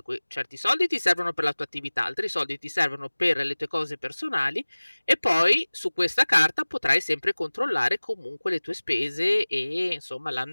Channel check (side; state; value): both; inverted; correlation -1.00